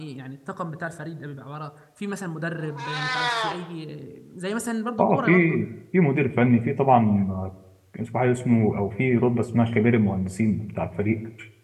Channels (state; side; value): identical; both; correlation 1.00